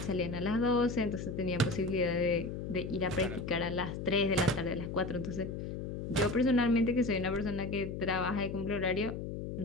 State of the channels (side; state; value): left; noise; hum, 6 dB below the sound